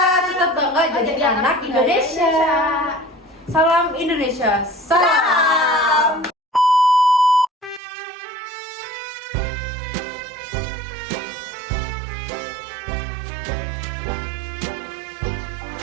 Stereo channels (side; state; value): left; drops out; at 7.8 s